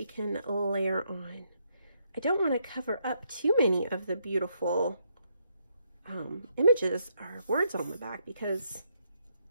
can layer on. I don't want to cover up too many of the beautiful images or words on the back because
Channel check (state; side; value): inverted; both; correlation -0.75